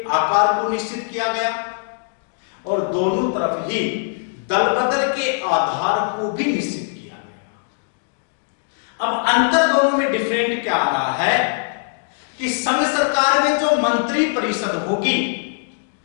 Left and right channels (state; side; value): silent; right; digital silence